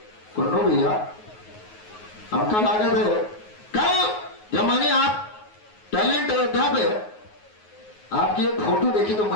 कुन्नू भैया आपका लागत है। कल जब मैंने आप टैलेंट अयोध्या पे आपकी एक फोटो देखी तो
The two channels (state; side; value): late; right; 9.5 ms